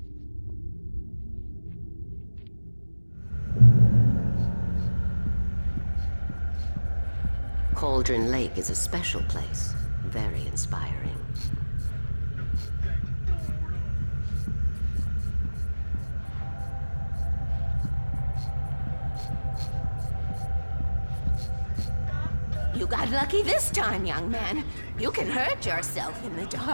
Cauldron Lake is a special place. Very inspiring. You got lucky this time, young man. You can hurt yourself in the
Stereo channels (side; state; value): both; inverted; correlation -1.00